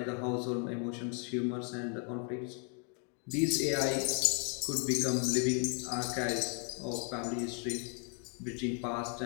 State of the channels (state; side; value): quieter; right; 39.0 dB